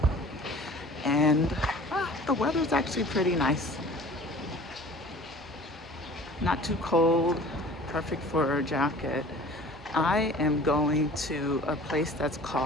and the weather's actually pretty nice. Not too cold, perfect for a jacket. I am going to a place that's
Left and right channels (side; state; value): both; normal; correlation 0.45